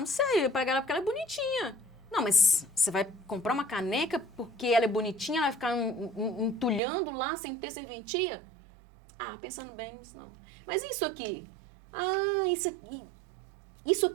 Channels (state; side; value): drops out; left; at 6.8 s